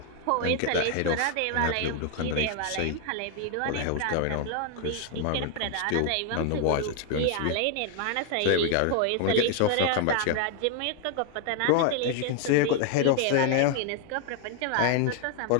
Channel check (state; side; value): different; both; correlation 0.00